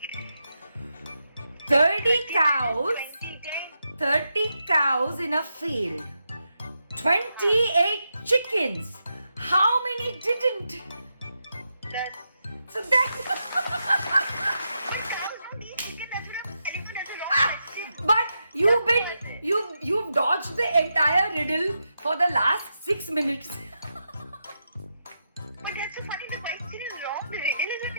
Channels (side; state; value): both; inverted; correlation -0.85